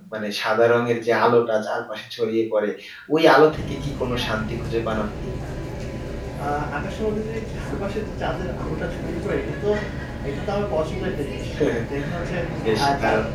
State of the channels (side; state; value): both; identical; correlation 1.00